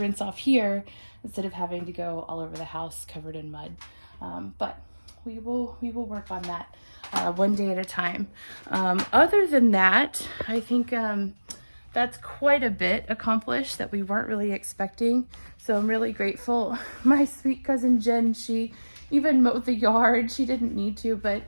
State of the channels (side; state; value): both; inverted; correlation -1.00